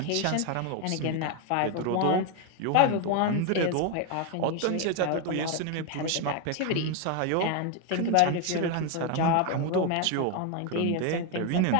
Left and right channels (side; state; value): both; different; correlation 0.01